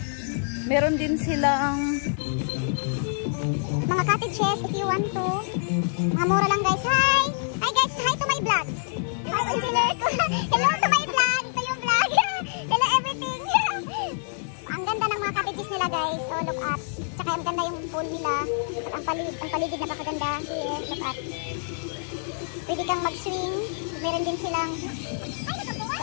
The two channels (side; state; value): right; silent; digital silence